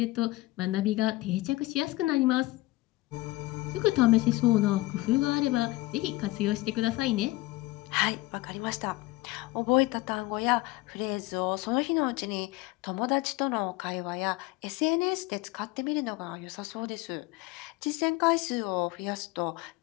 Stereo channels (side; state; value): right; quieter; 19.7 dB